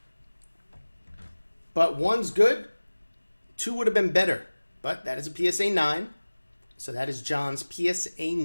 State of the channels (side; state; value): both; inverted; correlation -1.00